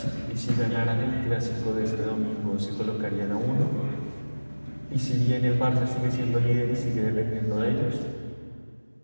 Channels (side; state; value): both; inverted; correlation -1.00